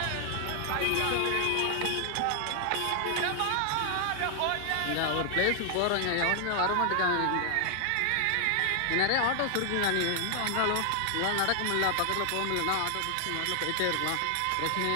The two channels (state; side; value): different; both; correlation 0.00